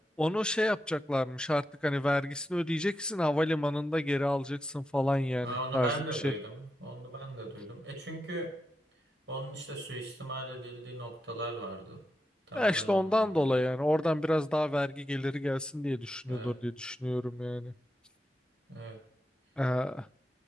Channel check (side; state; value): both; normal; correlation 0.87